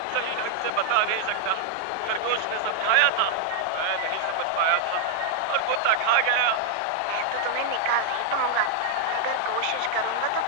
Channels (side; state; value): both; different; correlation 0.00